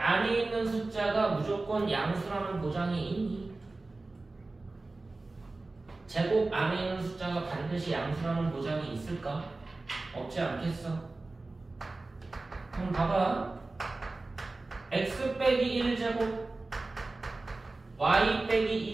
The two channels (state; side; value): quieter; left; 3.3 dB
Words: 있는 숫자가 무조건 양수라는 보장이 있니? 제곱 안에 있는 숫자가 반드시 양수라는 보장이 있을까? 없지 않겠어? 그럼 봐봐. x 빼기 1제곱 y